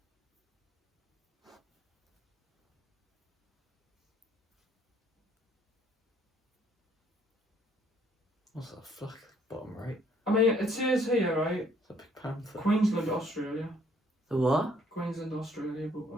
What's that flag bottom right? I mean, it says here, right? It's a big panther. Queensland, Australia. The what? Queensland, Australia, but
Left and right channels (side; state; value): both; normal; correlation 0.64